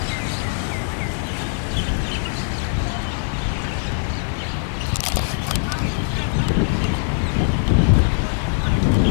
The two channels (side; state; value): right; silent; digital silence